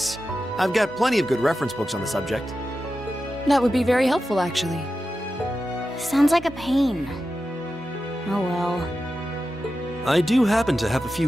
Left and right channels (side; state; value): both; normal; correlation 0.91